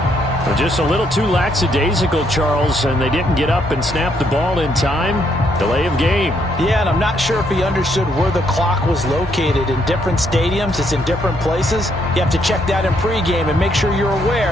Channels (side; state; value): both; normal; correlation 0.73